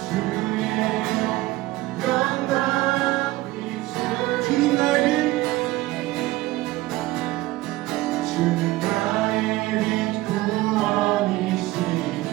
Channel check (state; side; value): quieter; left; 18.3 dB